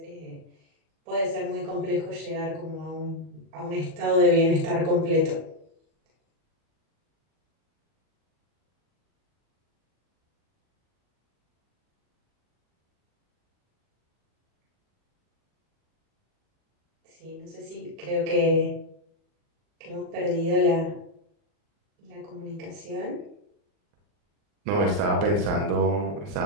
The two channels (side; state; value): left; late; 40 ms